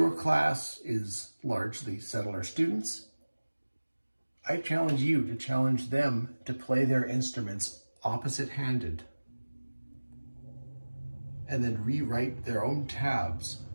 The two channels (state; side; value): inverted; both; correlation -1.00